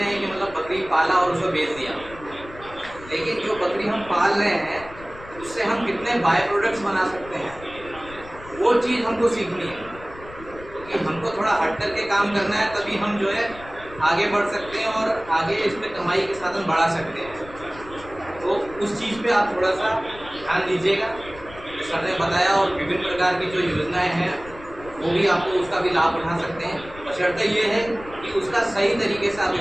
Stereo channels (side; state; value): left; noise; rumble, 18 dB below the sound